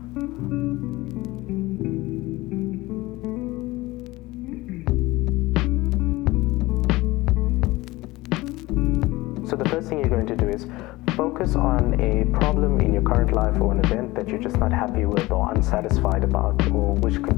So the first thing you're going to do is focus on a problem in your current life or an event that you're just not happy with or unsatisfied about, or which could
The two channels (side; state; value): right; quieter; 19.9 dB